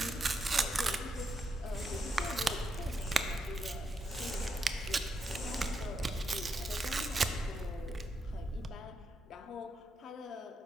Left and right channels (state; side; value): normal; both; correlation 0.83